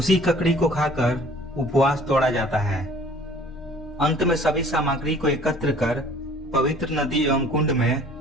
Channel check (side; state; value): both; normal; correlation 0.52